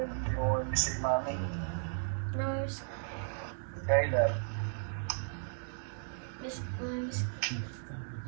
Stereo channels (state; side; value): silent; left; digital silence